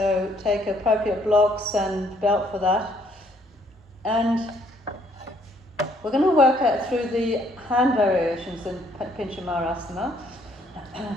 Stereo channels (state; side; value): normal; both; correlation 0.66